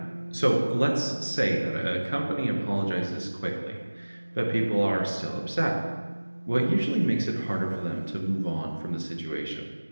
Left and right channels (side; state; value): both; inverted; correlation -1.00